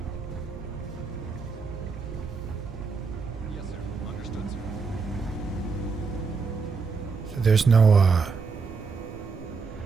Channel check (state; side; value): quieter; left; 5.0 dB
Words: Yes, sir. Understood, sir. So there's no